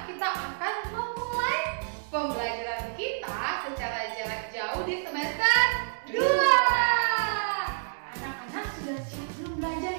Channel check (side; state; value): left; silent; digital silence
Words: kita akan memulai pembelajaran kita secara jarak jauh di semester 2. Anak-anak sudah siap belum belajar